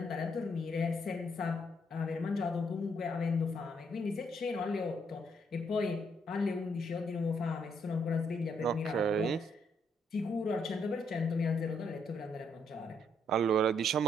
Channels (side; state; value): both; normal; correlation 0.73